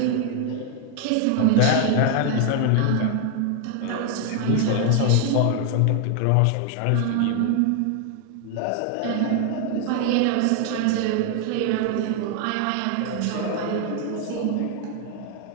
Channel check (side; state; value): both; different; correlation 0.00